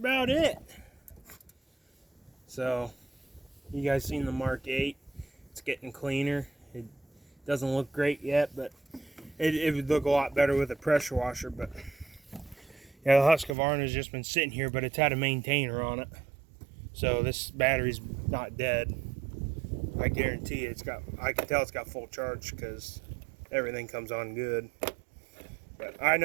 it. So, you guys seen the Mark 8? It's getting cleaner. It doesn't look great yet, but it would look a lot better with a pressure washer. But yeah, the Husqvarna's just been sitting here, but it's had a maintainer on it. So this battery's not dead. I guarantee you I can tell it's got full charge because everything comes on good. But I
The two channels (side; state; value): left; drops out; at 13.6 s